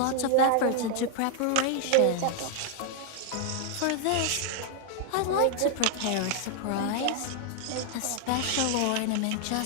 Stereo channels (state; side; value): different; both; correlation 0.00